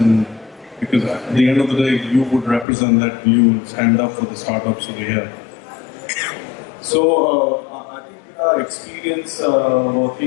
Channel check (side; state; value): right; drops out; at 2.7 s